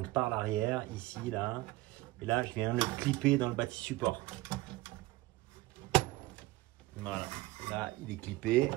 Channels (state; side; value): quieter; left; 18.9 dB